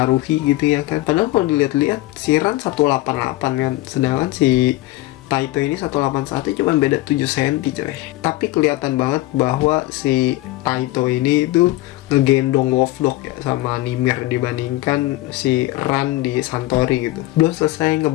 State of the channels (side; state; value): right; quieter; 17.7 dB